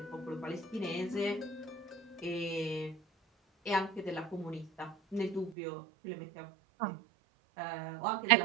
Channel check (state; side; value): drops out; left; at 5.6 s